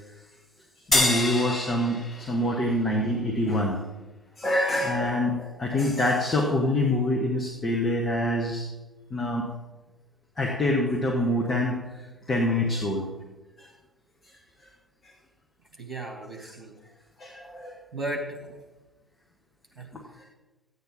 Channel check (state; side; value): normal; both; correlation 0.50